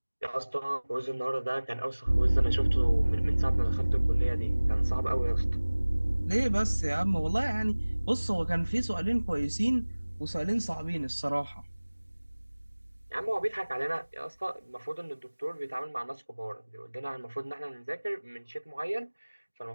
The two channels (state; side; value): inverted; both; correlation -1.00